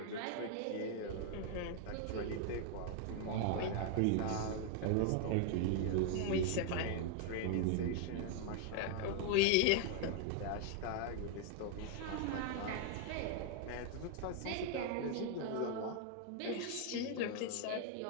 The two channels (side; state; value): both; different; correlation 0.00